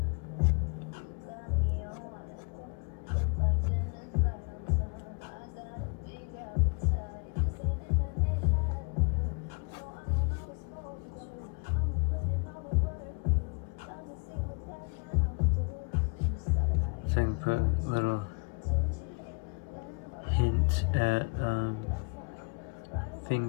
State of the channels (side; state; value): right; quieter; 33.5 dB